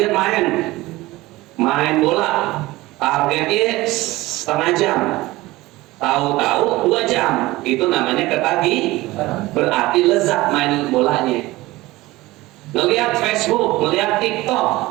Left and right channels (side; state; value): left; quieter; 19.1 dB